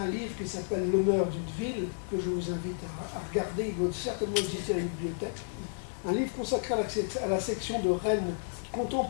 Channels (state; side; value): silent; right; digital silence